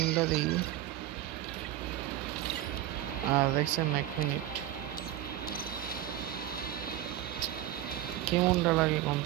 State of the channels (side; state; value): left; quieter; 13.3 dB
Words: দিই। আর দেখছেন 1 মিনিট কেমনটা লাগে